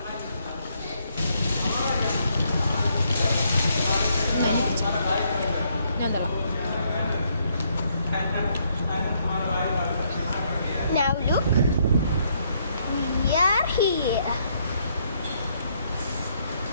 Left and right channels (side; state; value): both; inverted; correlation -0.72